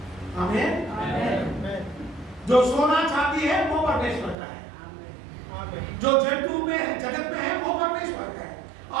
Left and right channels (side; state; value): left; drops out; at 4.4 s